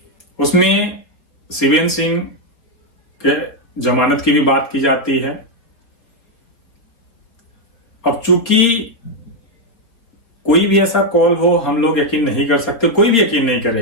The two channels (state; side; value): late; right; 4.3 ms